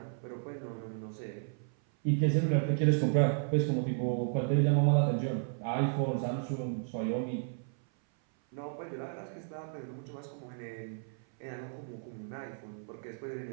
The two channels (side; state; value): left; silent; 56 dB below the other